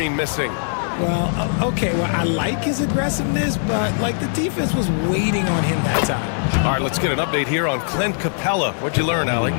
missing. Well, okay, well, I like his aggressiveness, but, like, the defense was waiting on him that time. All right, let's get an update here on Clint Capella. What'd you learn, Allie?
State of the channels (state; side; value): silent; right; 65 dB below the other